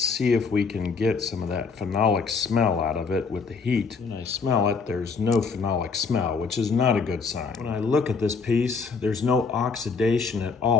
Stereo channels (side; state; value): right; quieter; 5.0 dB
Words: if we can get some of that phenolic smell out of it with the heat. When I smell it, there's no phenolic smell, which is not a good sign. When I look at this piece, there's no oxidation at